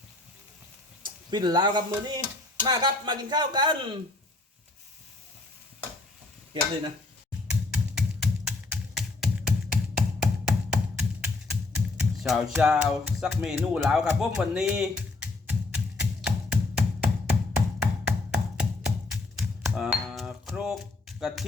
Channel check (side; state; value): right; quieter; 3.2 dB